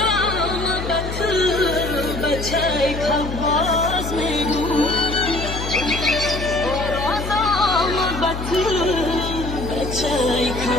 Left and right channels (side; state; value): left; noise; hum, 7 dB below the sound